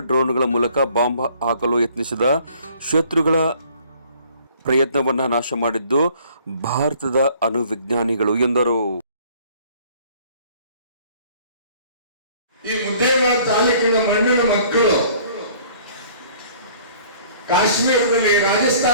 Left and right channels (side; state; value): both; inverted; correlation -0.55